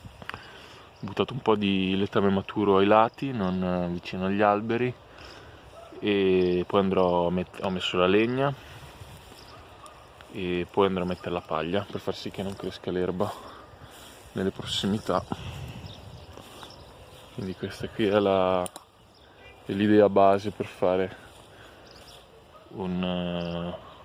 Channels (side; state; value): both; identical; correlation 1.00